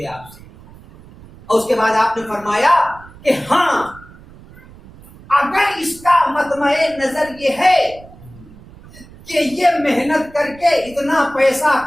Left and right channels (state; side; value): noise; right; rumble, 21 dB below the sound